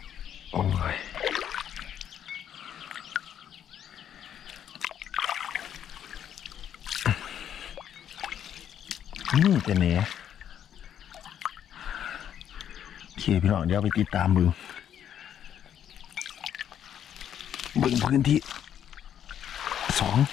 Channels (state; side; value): quieter; right; 9.6 dB